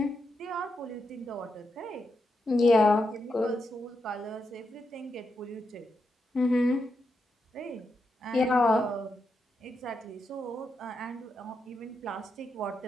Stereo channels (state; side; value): normal; both; correlation 0.84